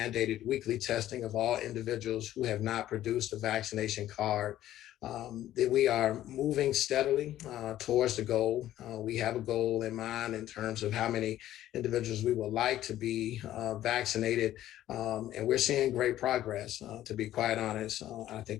weekly testing of all individuals who have not produced a vaccination card. That we are moving steadily towards the goal. We have a goal in mind in terms of how many individuals we would like to be vaccinated. And we're seeing great progress, to be quite honest. I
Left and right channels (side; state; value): right; quieter; 13.2 dB